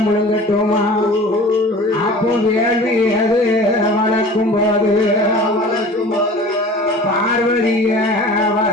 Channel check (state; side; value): normal; both; correlation 0.42